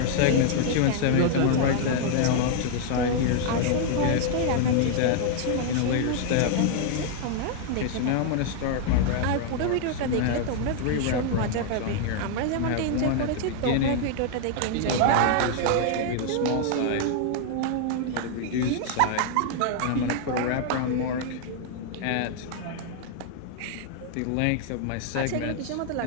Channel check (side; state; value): both; different; correlation 0.00